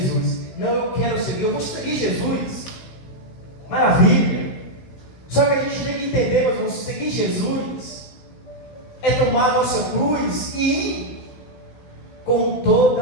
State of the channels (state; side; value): late; right; 16 ms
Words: Não, eu quero seguir, eu vou seguir Jesus. Maravilha. Só que a gente tem que entender, meu irmão, seguir Jesus é tomar a nossa cruz e ir com toda